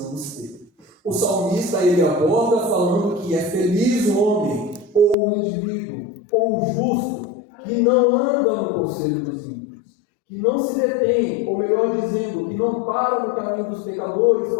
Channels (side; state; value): right; drops out; at 5.2 s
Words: ter. O salmista, ele aborda falando que é feliz o homem, ou o indivíduo, ou o justo, que não anda no conselho dos ímpios, que não se detém, ou melhor dizendo, que não para no caminho dos pecadores